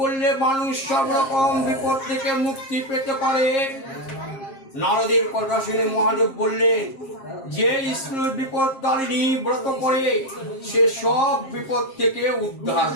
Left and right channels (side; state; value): right; late; 7.4 ms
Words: মানুষ সব রকম বিপদ থেকে মুক্তি পেতে পারে? নারদের কথা শুনে মহাদেব বললেন, যে স্ত্রীর বিপদ তারিণী ব্রত করে সে সব বিপদ থেকে উদ্ধার